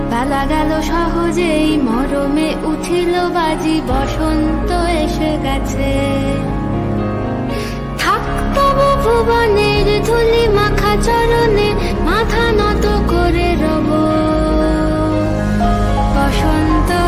বেলা গেল সহজেই, মরমে উঠিল বাজি বসন্ত এসে গেছে। থাকতব ভুবনের ধুলি মাখা চরণে, মাথা নত করে রব। বসন্ত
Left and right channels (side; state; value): both; identical; correlation 1.00